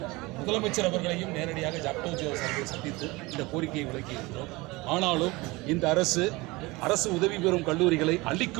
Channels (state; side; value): quieter; left; 22.7 dB